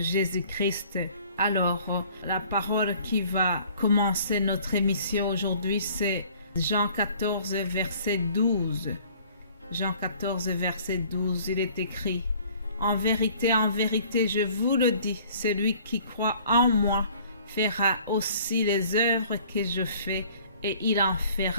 Alors, la parole qui va commencer notre émission aujourd'hui, c'est Jean 14, verset 12. Jean 14, verset 12, il est écrit: en vérité, je vous le dis, celui qui croit en moi fera aussi les œuvres que je fais, et il en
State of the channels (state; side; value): inverted; both; correlation -0.54